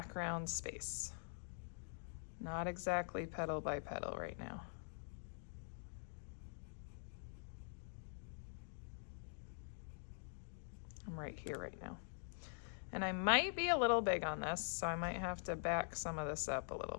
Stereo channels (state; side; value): silent; right; digital silence